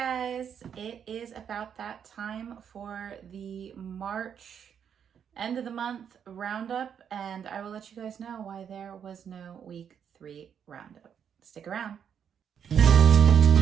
it is about that time for the March end of the month roundup, and I will let you guys know why there was no week 3 roundup. Stick around.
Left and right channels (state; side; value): quieter; left; 8.1 dB